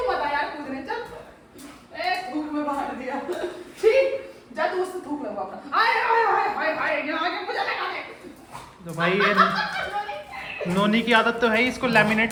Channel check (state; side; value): identical; both; correlation 1.00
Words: तो भाई ये नोनी की आदत तो है ही इसको